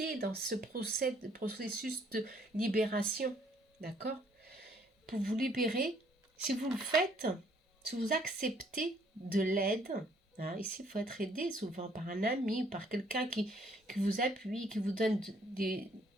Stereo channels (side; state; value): both; normal; correlation 0.64